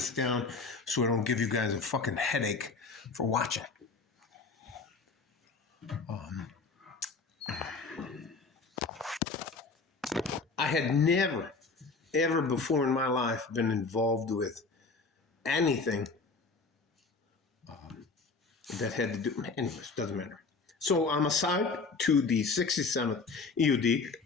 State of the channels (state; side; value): quieter; right; 4.2 dB